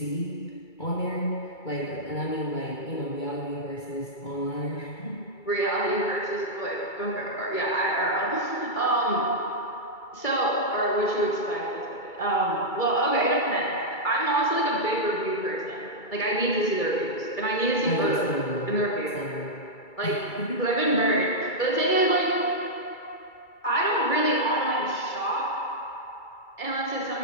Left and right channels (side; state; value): right; late; 2.3 ms